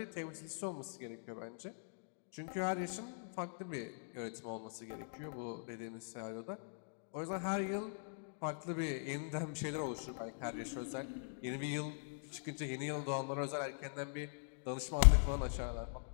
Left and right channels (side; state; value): right; silent; digital silence